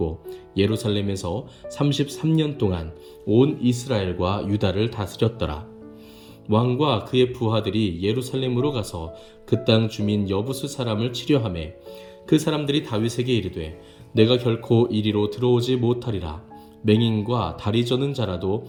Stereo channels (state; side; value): identical; both; correlation 1.00